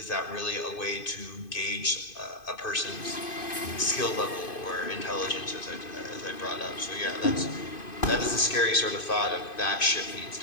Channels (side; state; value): right; late; 2.5 ms